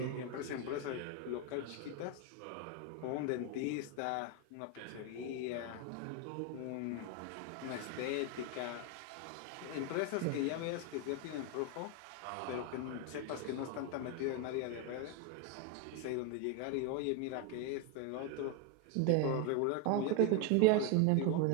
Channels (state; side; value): different; both; correlation 0.01